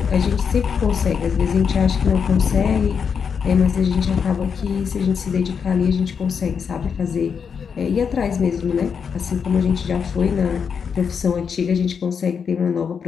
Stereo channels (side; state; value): right; quieter; 6.5 dB